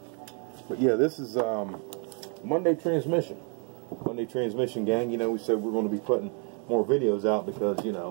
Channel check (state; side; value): quieter; left; 38.8 dB